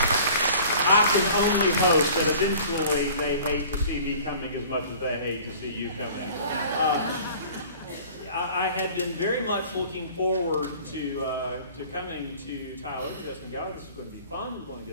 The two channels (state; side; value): inverted; both; correlation -0.46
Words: I can only hope that eventually they hate to see me coming as much as they hate to see you coming. I had been very much looking forward to coming to Tyler just and go, this is going to be fun. We're going to